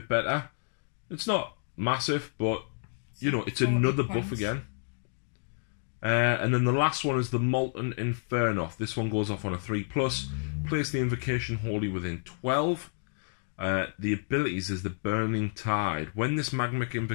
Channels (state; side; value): silent; right; digital silence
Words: better. It's not massive, but it's another buff again. And then the last one is the Molten Inferno. This one goes off on a 3+. Place the invocation wholly within 12. The abilities is the Burning Tide. When this Magmic